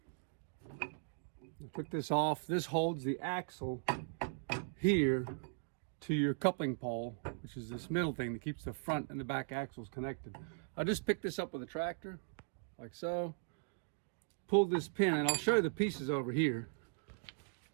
I took this off. This holds the axle here to your coupling pole, which is this middle thing that keeps the front and the back axles connected. I just picked this up with a tractor, like so. Pulled this pin, and I'll show you the pieces over here.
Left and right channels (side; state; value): left; silent; digital silence